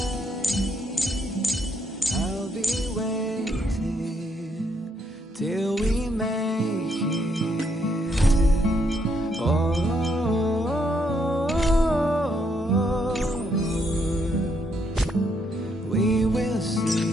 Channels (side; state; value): both; normal; correlation 0.74